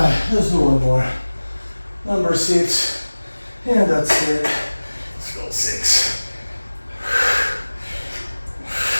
let's do one more. Number 6, and that's it. Let's go 6.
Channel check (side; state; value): both; inverted; correlation -1.00